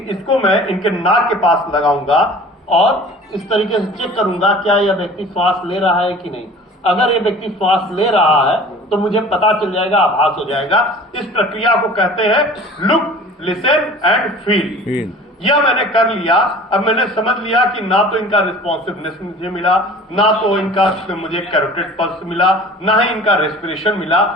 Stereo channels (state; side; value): normal; both; correlation 0.44